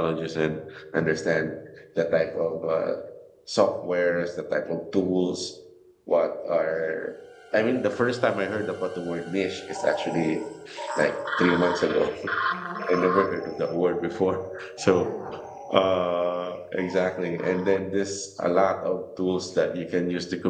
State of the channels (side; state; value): both; identical; correlation 1.00